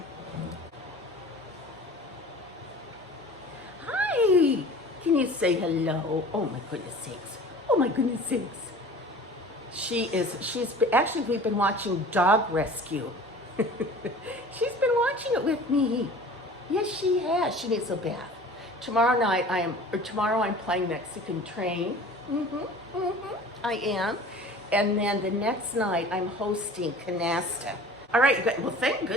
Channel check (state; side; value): normal; both; correlation 0.43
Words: Hi, can you say hello? Oh my goodness sakes. Oh my goodness sakes. Actually, we've been watching Dog Rescue. She's been watching it with me. Yes, she has. She needs a bath. Tomorrow I'm playing Mexican Train. I am. And then the next night I'm hosting Canasta. All right, you guys, well, thank